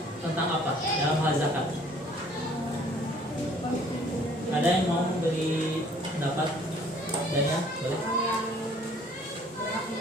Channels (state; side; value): normal; both; correlation 0.57